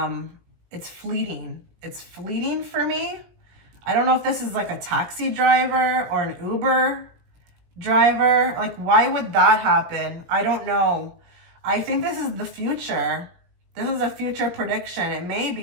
It's fleeting. It's fleeting for me. I don't know if this is like a taxi driver or an Uber driver. Like, why would that happen? I don't know. I think this is the future. This is a future prediction. It may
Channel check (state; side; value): late; left; 17 ms